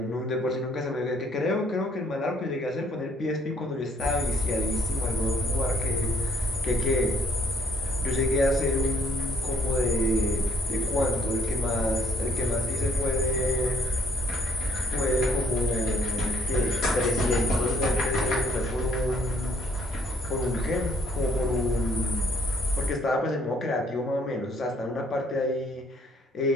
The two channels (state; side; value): normal; both; correlation 0.64